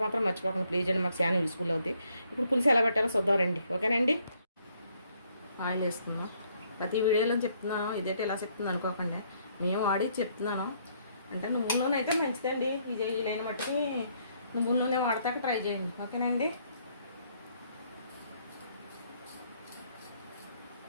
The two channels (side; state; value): both; inverted; correlation -0.69